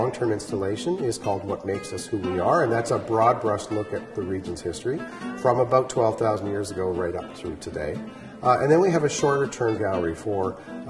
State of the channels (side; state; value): both; identical; correlation 1.00